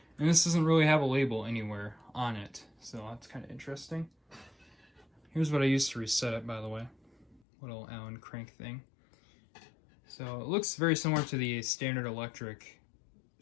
and this doesn't really have a label anywhere on it, so that's kind of interesting. Here's what I used to reset it, by the way. Little Allen crank thing. So it looks very similar to the standard electric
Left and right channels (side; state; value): right; drops out; at 7.4 s